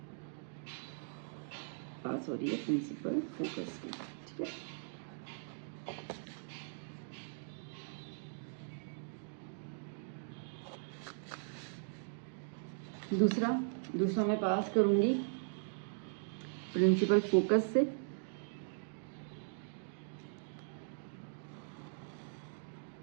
पास हो रही है प्रिंसिपल फोकस की। ठीक है, दूसरा मैं पास करूंगी प्रिंसिपल फोकस से,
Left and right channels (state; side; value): silent; left; digital silence